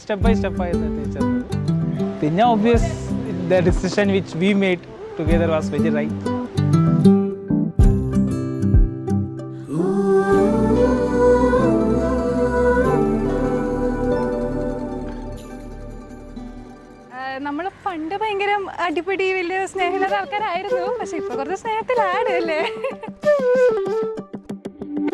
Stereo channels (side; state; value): both; identical; correlation 1.00